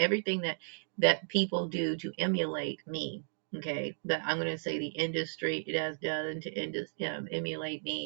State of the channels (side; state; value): left; silent; digital silence